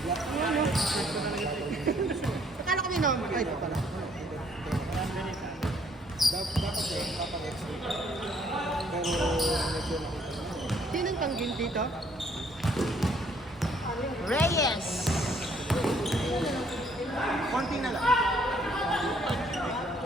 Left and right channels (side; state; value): both; normal; correlation 0.65